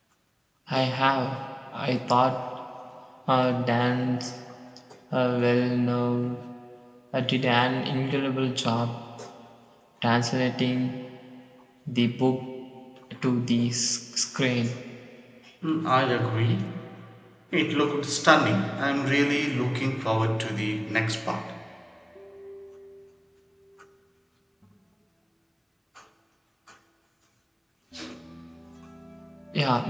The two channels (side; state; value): both; identical; correlation 1.00